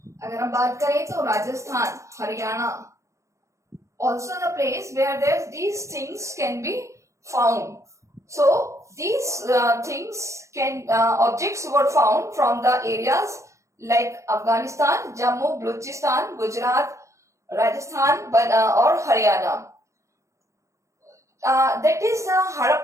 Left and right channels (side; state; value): left; late; 0.15 ms